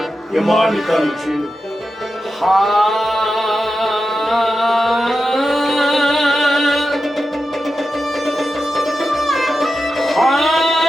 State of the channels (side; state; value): both; normal; correlation 0.91